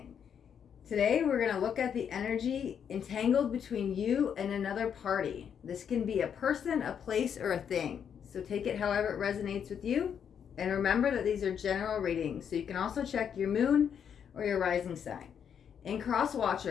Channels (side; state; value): right; quieter; 8.0 dB